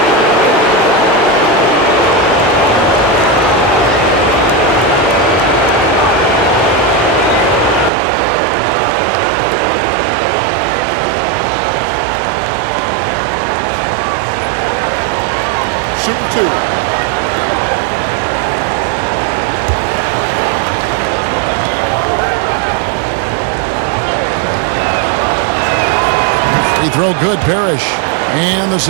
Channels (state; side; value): drops out; left; at 7.9 s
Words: Shooting 2. Free throw good, Parrish. And the